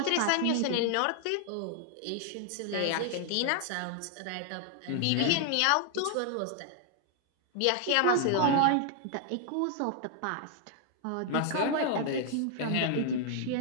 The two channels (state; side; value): different; both; correlation 0.00